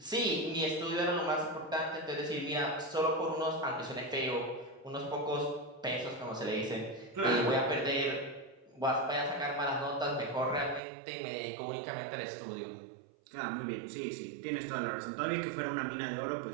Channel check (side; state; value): left; drops out; at 10.8 s